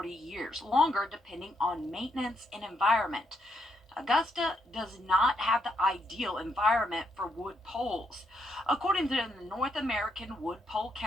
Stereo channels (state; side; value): normal; both; correlation 0.77